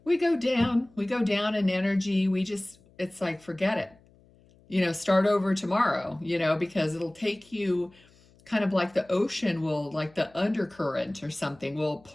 we go down in energy. It's like, forget it, you know, start over tomorrow, you know, because it'll take you kind of like the ocean will, like the undercurrent or something will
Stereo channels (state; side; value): noise; left; hum, 29 dB below the sound